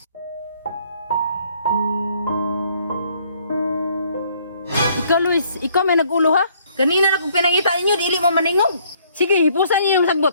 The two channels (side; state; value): both; inverted; correlation -0.64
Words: Ikaw, Luis, ikaw may nag-ulo ha? Kanina na kung pinangita ninyo, dili mo maningog. Sige, hipusan niyo yung